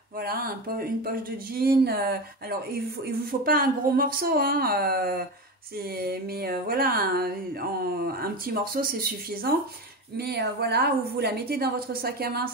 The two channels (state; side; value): normal; both; correlation 0.22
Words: voilà, une poche de jean. Alors il vous faut pas un gros morceau, hein, voilà, un petit morceau c'est suffisant. Mais voilà, où vous la mettez dans votre sac à main